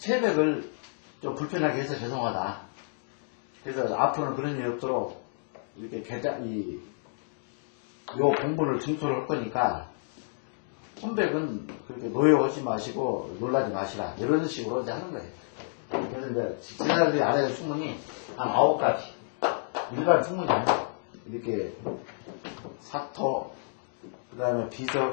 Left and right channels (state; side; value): silent; right; digital silence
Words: 좀 불편하게 해서 죄송하다. 그래서 앞으로는 그런 일이 없도록 이렇게 요 공부를 증토를 할 거니까 혼백은 그렇게 노여하지 마시고 놀라지 마시라. 이런 식으로 이제 하는 거예요. 그래서 이제 지사들이 알아야 될 충문이 한 9가지. 일반 충문이 아니에요. 이렇게 사토, 그 다음에